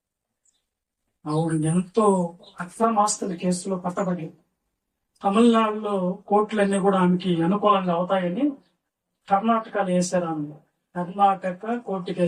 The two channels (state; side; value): identical; both; correlation 1.00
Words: ఆవిడ ఎంతో అక్రమాస్తుల కేసులో పట్టబడి తమిళనాడులో కోర్టులన్నీ కూడా ఆమెకి అనుకూలంగా అవుతాయని కర్ణాటకలో వేశారు. ఆమె కర్ణాటక కోర్టుకి